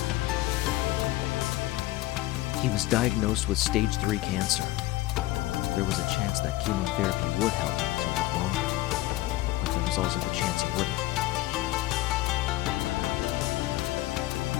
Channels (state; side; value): quieter; right; 17.2 dB